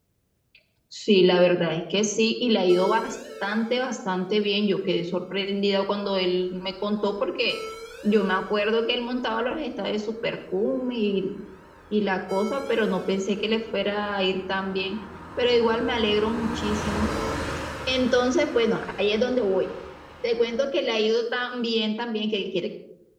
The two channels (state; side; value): identical; both; correlation 1.00